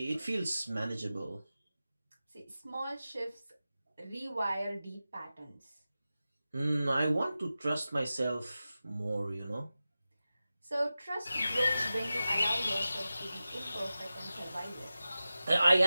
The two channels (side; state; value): both; inverted; correlation -0.94